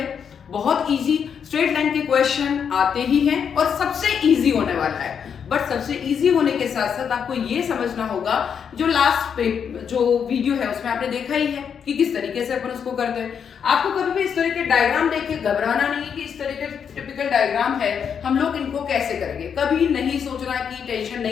बहुत इजी स्ट्रेट लाइन के क्वेश्चन आते ही हैं और सबसे इजी होने वाला है। बट सबसे इजी होने के साथ साथ आपको ये समझना होगा जो लास्ट जो वीडियो है उसमें आपने देखा ही है कि किस तरीके से अपन उसको करते हैं। आपको कभी भी इस तरह के डायग्राम देख के घबराना नहीं कि इस तरह के टिपिकल डायग्राम है हम लोग इनको कैसे करेंगे, कभी नहीं सोचना कि टेंशन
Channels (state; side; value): quieter; right; 7.3 dB